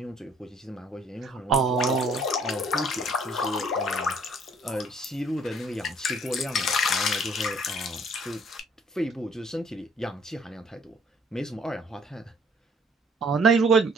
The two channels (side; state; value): both; normal; correlation 0.60